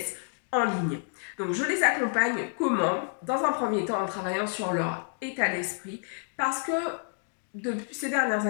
en ligne. Donc, je les accompagne comment? Dans un premier temps, en travaillant sur leur état d'esprit parce que depuis ces dernières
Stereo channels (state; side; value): silent; right; 59 dB below the other